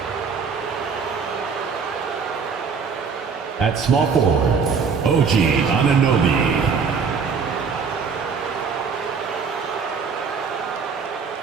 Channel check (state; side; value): quieter; left; 5.7 dB